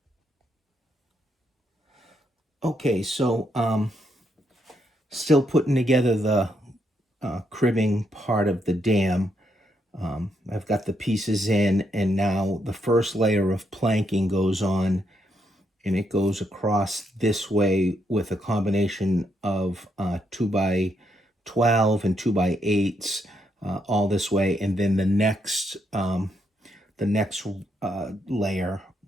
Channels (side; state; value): both; normal; correlation 0.77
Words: Okay, so still putting together the cribbing part of the dam. I've got the pieces in, and now the first layer of planking goes on, and it goes across this way with a combination of 2x12 and 2x8s all this way, and then the next layer